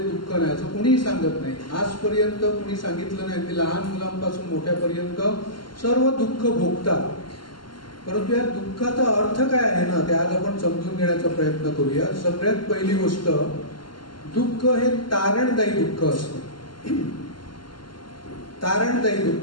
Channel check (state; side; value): late; right; 0.72 ms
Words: दुःख नाही, असं कुणीही सांगत नाही. आजपर्यंत कुणी सांगितलं नाही. की लहान मुलांपासून मोठ्यापर्यंत सर्व दुःख भोगतात. परंतु या दुःखाचा अर्थ काय आहे ना, ते आज आपण समजून घेण्याचा प्रयत्न करूया. सगळ्यात पहिली गोष्ट, दुःख हे तारणदायी दुःख असतं. तारणदायी